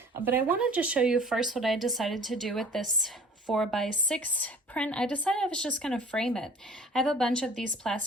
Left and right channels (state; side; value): normal; both; correlation 0.48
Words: but I wanted to show you first what I decided to do with this 4x6 print. I decided I was just going to frame it. I have a bunch of these